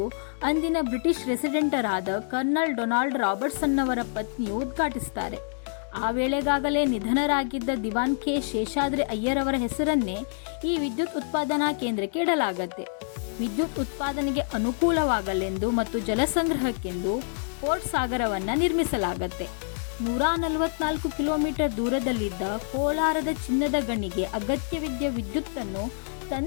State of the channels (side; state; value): right; silent; digital silence